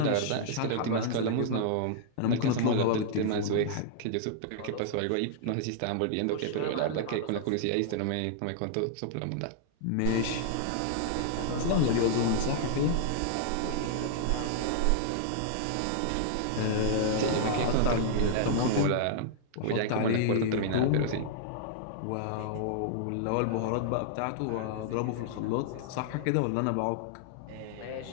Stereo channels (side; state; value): both; different; correlation -0.01